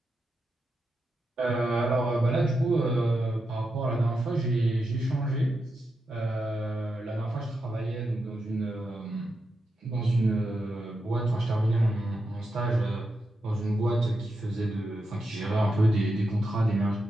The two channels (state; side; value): normal; both; correlation 0.86